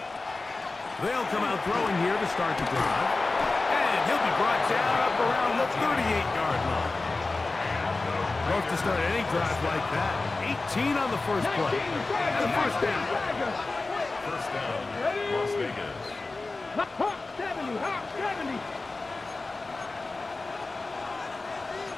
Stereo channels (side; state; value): right; quieter; 3.5 dB